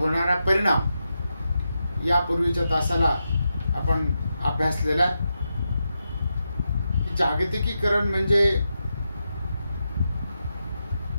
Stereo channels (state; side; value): inverted; both; correlation -0.87